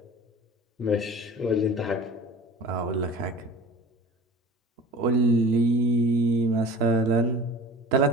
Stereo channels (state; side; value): normal; both; correlation 0.40